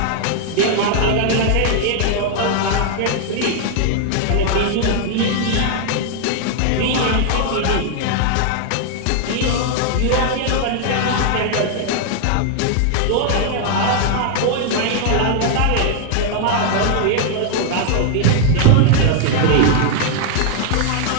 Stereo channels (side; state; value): both; different; correlation 0.00